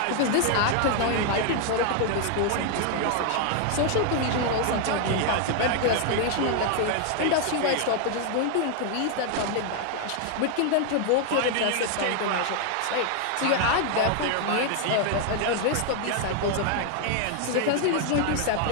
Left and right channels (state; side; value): different; both; correlation 0.00